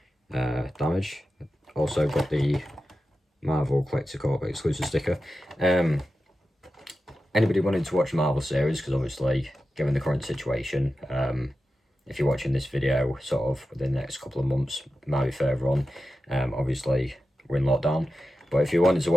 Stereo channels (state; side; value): normal; both; correlation 0.92